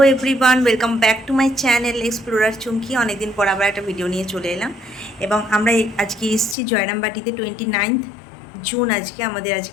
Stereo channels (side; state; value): right; drops out; at 6.6 s